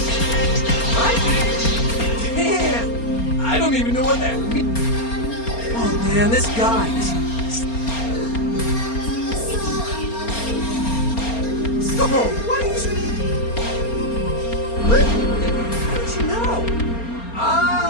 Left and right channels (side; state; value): right; late; 4.3 ms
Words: What? Damn. I don't even know what that means. Oh, man, this guy is... Oh, what is... What? How'd you know?